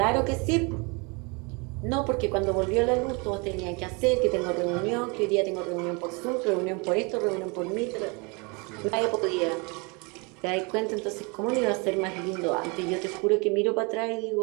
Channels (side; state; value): left; quieter; 30.3 dB